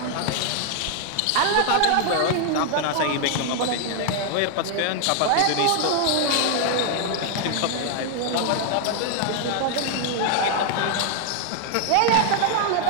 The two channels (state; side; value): different; both; correlation 0.00